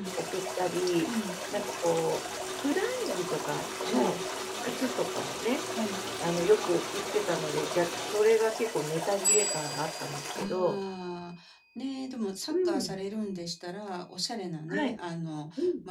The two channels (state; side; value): identical; both; correlation 1.00